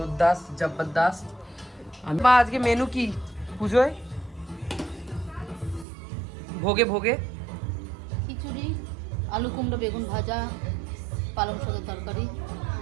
জবরদস্ত। মা আজকে মেনু কি পুজোয়? ভোগে ভোগে খিচুড়ি, আলু কুমড়ো বেগুন ভাজা, পালং শাকের তরকারি,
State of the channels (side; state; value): left; drops out; at 5.9 s